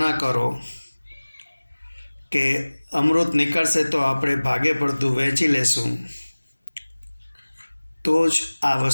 કરો કે અમૃત નીકળશે તો આપણે ભાગે પડતું વહેંચી લેશું, તો જ આ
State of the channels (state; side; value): inverted; both; correlation -1.00